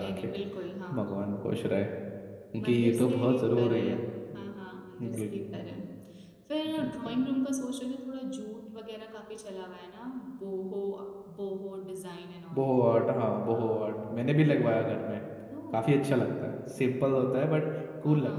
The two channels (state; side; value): identical; both; correlation 1.00